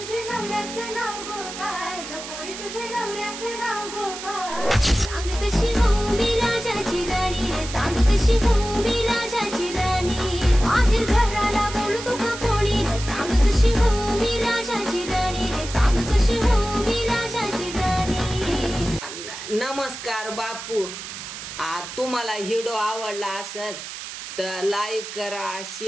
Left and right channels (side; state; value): right; noise; hiss, 10 dB below the sound